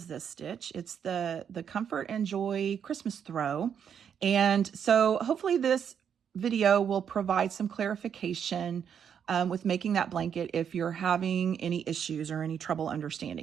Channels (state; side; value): quieter; left; 8.0 dB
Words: this stitch. It's the Comfort and Joy Christmas Throw. And so hopefully this video will provide some clarification with making that blanket if you're having any issues or any trouble